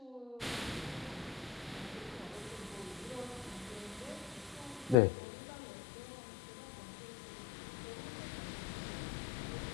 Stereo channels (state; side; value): drops out; right; at 5.0 s